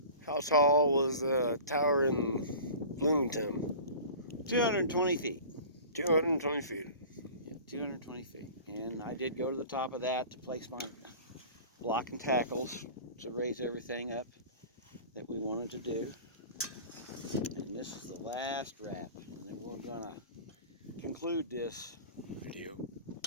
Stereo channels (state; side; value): inverted; both; correlation -0.40